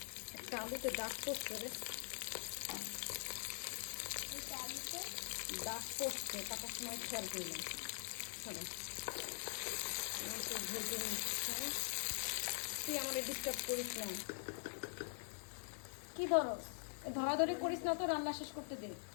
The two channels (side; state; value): right; silent; digital silence